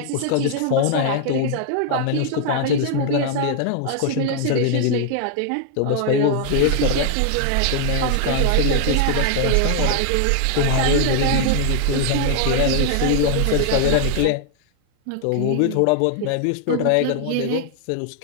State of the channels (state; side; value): different; both; correlation 0.00